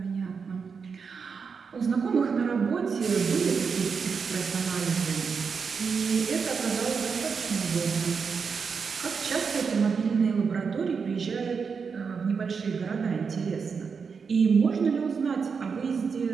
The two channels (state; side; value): quieter; left; 5.7 dB